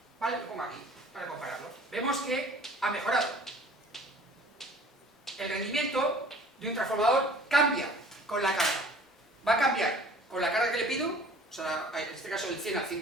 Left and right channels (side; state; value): both; normal; correlation 0.49